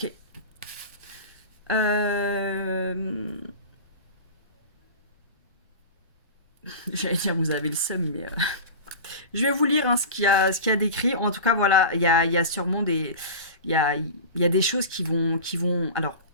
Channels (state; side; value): inverted; both; correlation -0.31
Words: J'allais dire, vous avez le seum, mais... Je vais vous lire hein, ce qu'il y a décrit. En tout cas, voilà, il y a sûrement des... Il y a des choses qui vont... Alors,